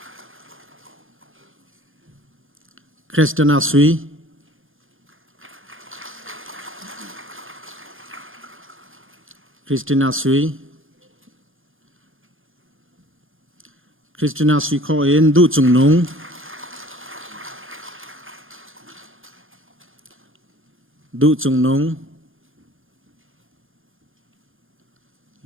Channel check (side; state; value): left; late; 0.59 ms